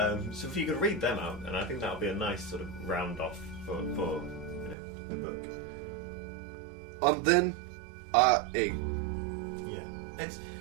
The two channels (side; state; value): left; drops out; at 4.8 s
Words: So if you could read them out, and I think that would be a nice sort of round off for the book. And then I ate. Yeah,